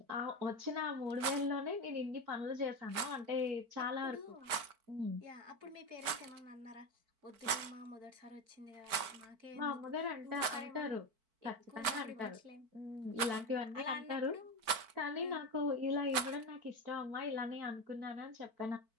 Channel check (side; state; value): left; late; 4.5 ms